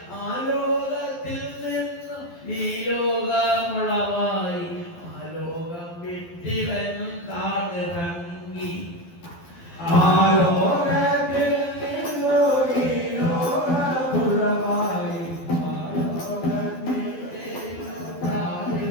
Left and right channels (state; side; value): late; right; 12 ms